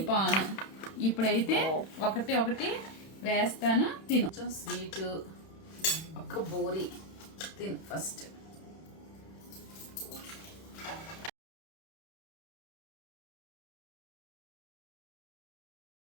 పాన్ ఇప్పుడైతే ఒకటి ఒకటి వేస్తాను. తిను. కొంచెం స్వీటు, ఒక బోరి తిను ఫస్ట్.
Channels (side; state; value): right; late; 31 ms